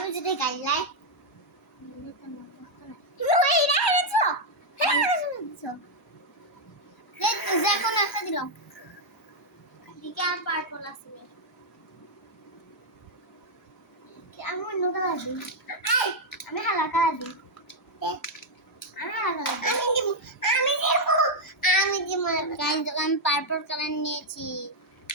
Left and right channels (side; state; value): both; normal; correlation -0.01